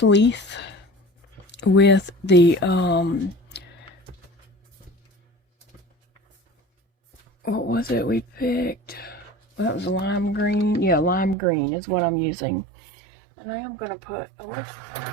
leaf with the what was it we picked? Well, that was lime green. Yeah, lime green is what I'm using. And I am going to put a little...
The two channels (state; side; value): drops out; left; at 11.4 s